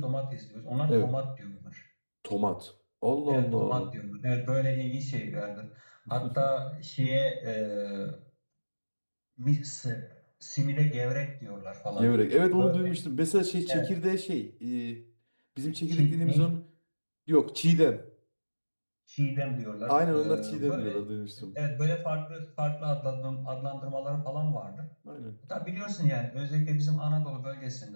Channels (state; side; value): inverted; both; correlation -1.00